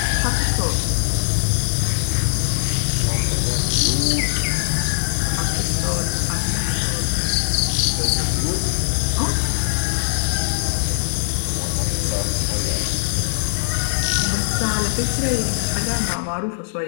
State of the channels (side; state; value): right; silent; 65 dB below the other